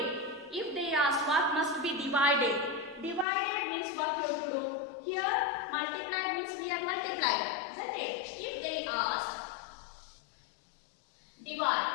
If they ask what must be divided. Divided means what you have to do. Here multiplied means we are multiplied. Isn't it? If they ask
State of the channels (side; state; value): right; drops out; at 3.2 s